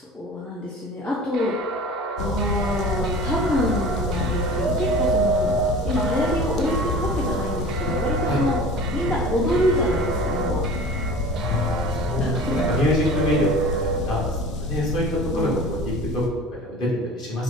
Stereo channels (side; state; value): both; normal; correlation 0.40